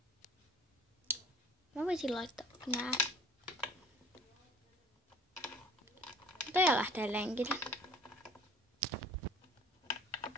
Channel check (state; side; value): normal; both; correlation 0.50